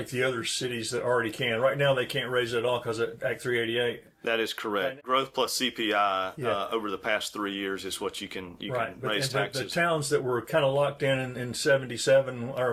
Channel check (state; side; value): identical; both; correlation 1.00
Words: the other cities that already can. Right now they can't raise it at all because of Act 388. That is correct. Growth plus CPI over the past 3 years is what you can raise taxes. The towns that were kind of locked in 77,